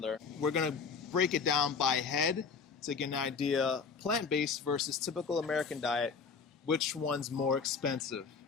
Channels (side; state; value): right; quieter; 5.5 dB